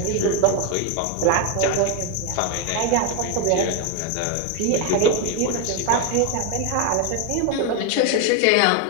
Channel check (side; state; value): both; different; correlation 0.02